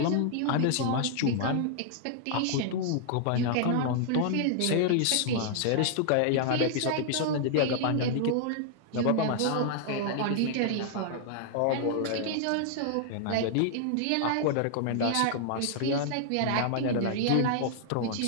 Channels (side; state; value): both; different; correlation -0.01